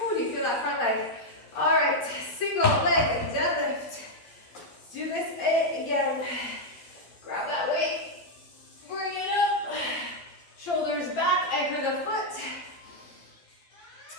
do you feel that front leg? All right, single leg deadlift. Let's do this again. Grab that weight. Bring it up. Shoulders back, anchor the foot.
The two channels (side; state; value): right; late; 12 ms